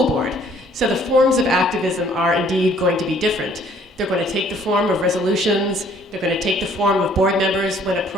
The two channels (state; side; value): normal; both; correlation 0.59